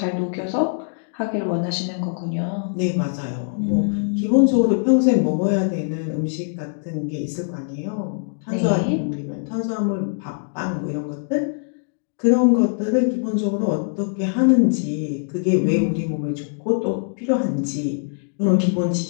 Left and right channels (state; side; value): silent; right; digital silence